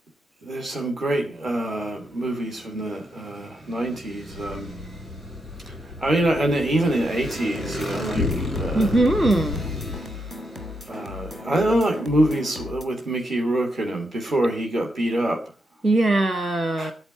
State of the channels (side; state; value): both; normal; correlation 0.82